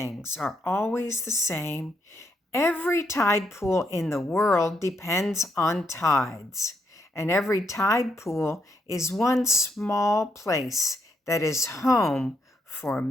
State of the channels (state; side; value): normal; both; correlation 0.78